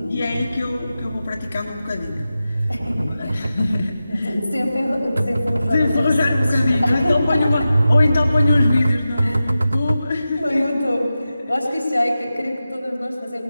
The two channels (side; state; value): both; inverted; correlation -0.93